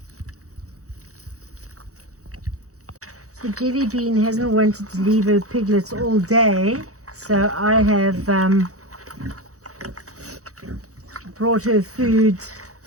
So Jelly Bean hasn't wanted to leave her piglets all day, so I have brought her food.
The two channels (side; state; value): left; late; 0.65 ms